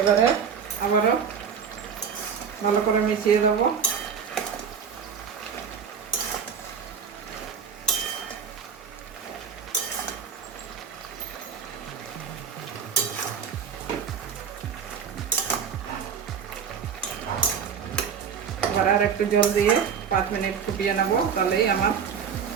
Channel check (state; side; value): quieter; left; 6.9 dB